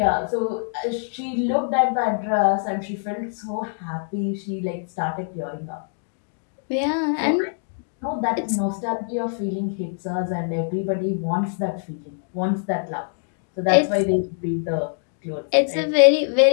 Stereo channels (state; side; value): silent; right; digital silence